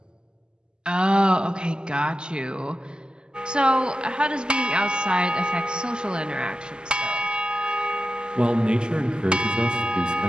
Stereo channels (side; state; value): left; late; 0.047 ms